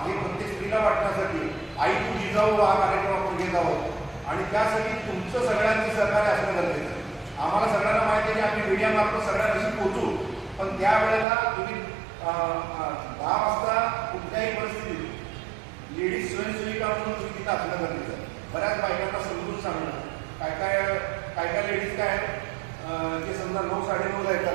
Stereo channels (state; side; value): drops out; left; at 11.2 s